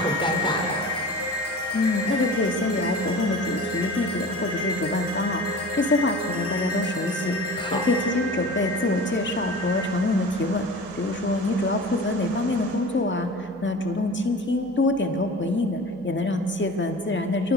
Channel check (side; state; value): both; normal; correlation 0.37